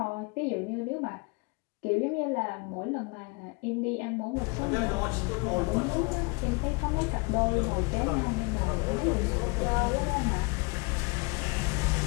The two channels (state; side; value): quieter; right; 30.2 dB